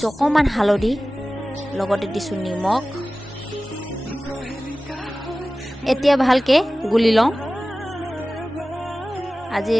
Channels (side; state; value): both; normal; correlation 0.97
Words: অকণমান হালধি, লগতে দিছোঁ নিমখ। এতিয়া ভালকৈ গুলি লওঁ।